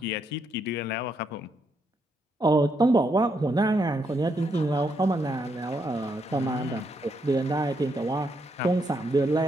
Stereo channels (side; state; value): both; normal; correlation 0.77